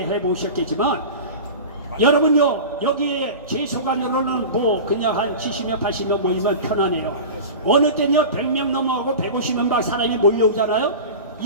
해보셨겠지만 여러분요, 여기에 제 소관으로는 뭐 그냥 한 70명 80명 모이면 편하네요. 어느 때는요 100명 넘어가고 150명 막 사람이 몰려오잖아요.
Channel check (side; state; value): both; inverted; correlation -0.31